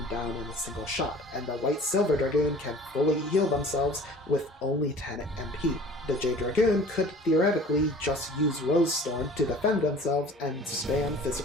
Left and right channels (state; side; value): normal; both; correlation 0.46